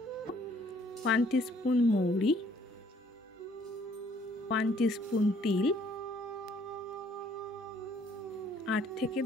1 টিস্পুন মৌরি, 1 টিস্পুন তিল, 8 থেকে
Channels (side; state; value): both; normal; correlation 0.62